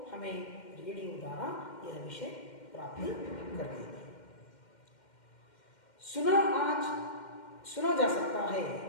हमें रेडियो द्वारा यह विषय प्राप्त करते थे. सुना जा सकता है,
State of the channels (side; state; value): right; late; 2.1 ms